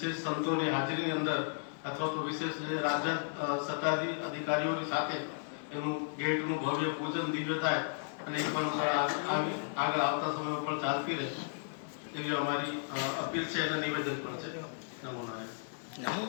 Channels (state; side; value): silent; right; digital silence